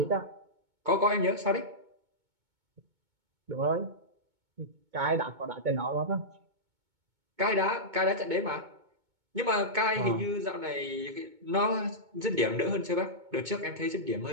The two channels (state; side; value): late; left; 2.2 ms